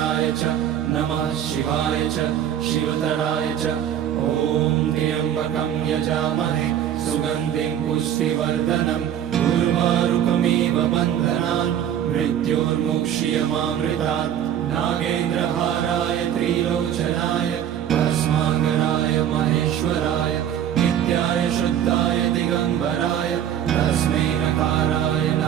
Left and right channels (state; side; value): quieter; left; 10.2 dB